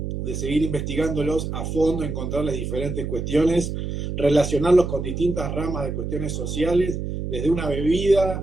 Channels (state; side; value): noise; right; hum, 4 dB below the sound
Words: de seguir investigándolos a fondo, encontrarles diferentes cuestiones, relacionarlos con distintas ramas de cuestiones sociales, desde una